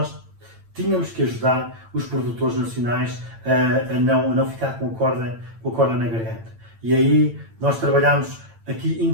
tínhamos que ajudar os produtores nacionais a não ficar com a corda na garganta. E aí nós trabalhámos aqui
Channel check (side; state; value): left; late; 8.9 ms